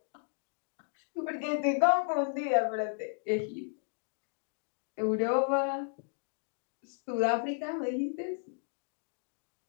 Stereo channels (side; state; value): right; silent; digital silence